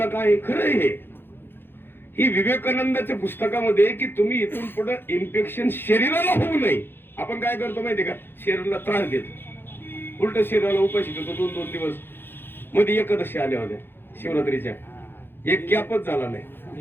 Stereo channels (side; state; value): right; late; 0.10 ms